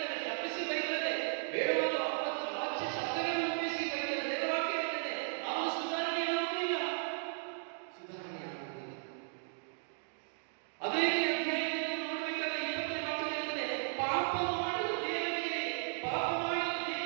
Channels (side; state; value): left; silent; digital silence